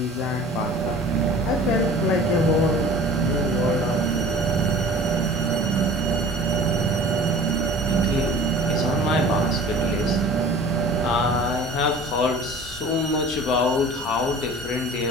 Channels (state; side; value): normal; both; correlation 0.43